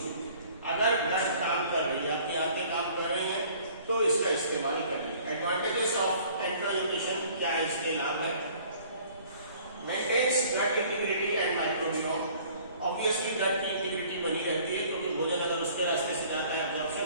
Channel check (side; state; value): both; inverted; correlation -0.53